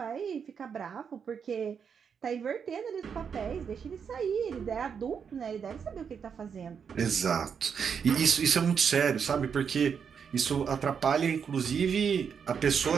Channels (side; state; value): left; quieter; 6.8 dB